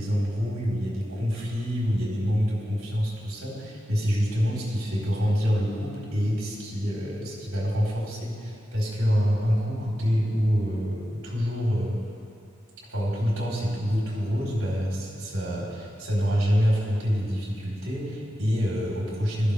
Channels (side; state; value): both; normal; correlation 0.92